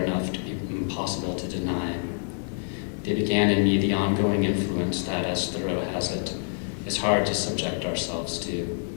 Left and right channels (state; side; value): silent; right; 60 dB below the other